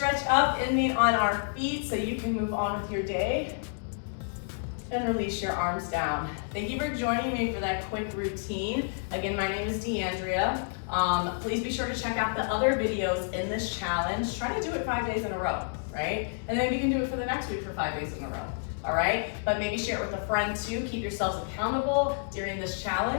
up in on our feet so you can move on with your day. And release your arms down. Thank you for joining me for that quick routine. Again, my name is Deanndria. Please be sure to check out the other videos in this challenge. Try to do it 5 days in a row, right? And then we can do it for the next week for 5 days in a row, all right? But maybe share it with a friend too. Keep yourselves accountable during this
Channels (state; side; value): silent; right; digital silence